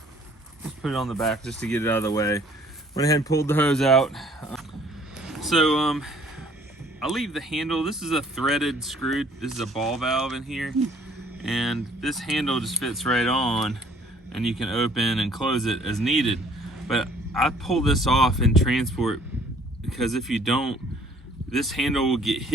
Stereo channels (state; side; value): normal; both; correlation 0.58